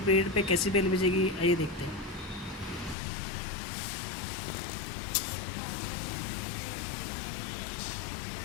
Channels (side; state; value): right; drops out; at 3.0 s